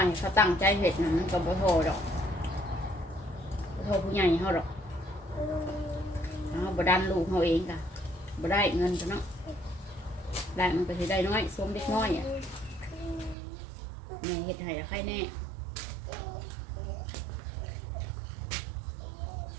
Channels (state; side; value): drops out; left; at 13.4 s